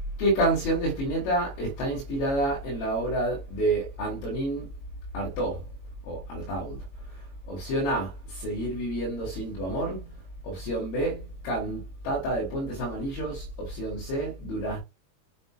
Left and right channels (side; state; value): right; late; 22 ms